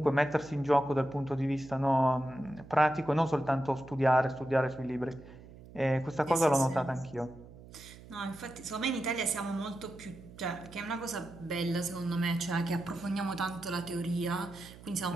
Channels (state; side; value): noise; right; hum, 19 dB below the sound